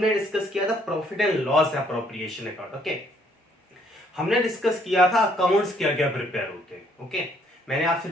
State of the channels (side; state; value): both; normal; correlation 0.66